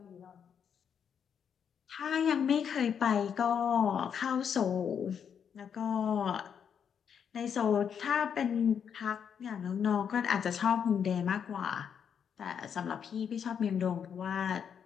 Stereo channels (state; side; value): quieter; right; 7.6 dB